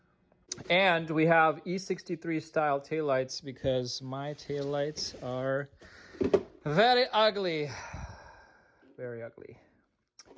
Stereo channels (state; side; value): identical; both; correlation 1.00